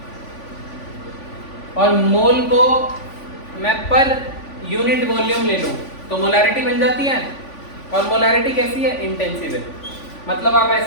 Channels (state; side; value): late; right; 3.5 ms